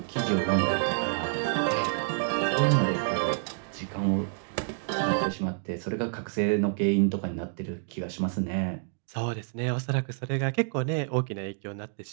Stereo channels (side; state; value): left; silent; digital silence